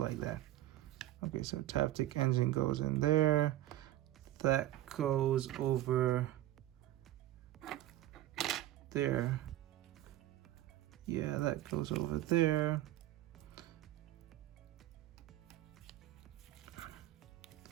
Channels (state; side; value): quieter; left; 14.3 dB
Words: that. Okay, so Taptic engine goes in there. That goes over there. Yeah, that goes over there.